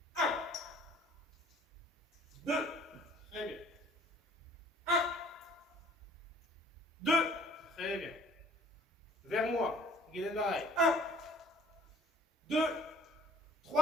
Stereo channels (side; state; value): both; normal; correlation 0.52